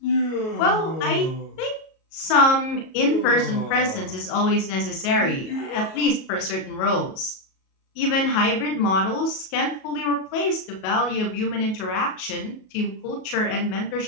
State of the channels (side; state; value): right; late; 37 ms